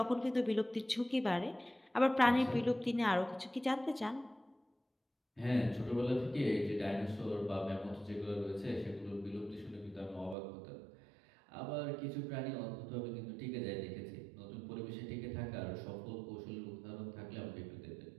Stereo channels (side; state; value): left; drops out; at 10.4 s